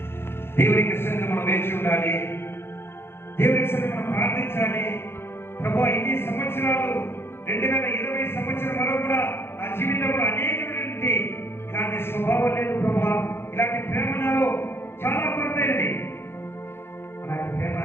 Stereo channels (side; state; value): right; late; 0.11 ms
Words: దేవునికి సన్నిధిలో మనం వేచి ఉండాలి. దేవునికి సన్నిధిలో మనం ప్రార్థించాలి. ప్రభువా, ఇన్ని సంవత్సరాలు 2020 సంవత్సరం వరకు కూడా నా జీవితంలో అనేకమైనటువంటి ఇలాంటి స్వభావం లేదు ప్రభువా, ఇలాంటి ప్రేమ నాలో చాలా కొరతైనది. అలాంటి ప్రేమ